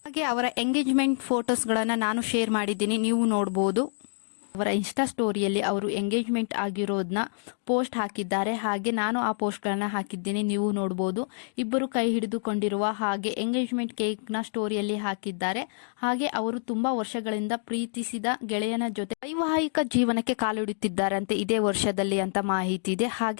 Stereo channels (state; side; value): silent; right; digital silence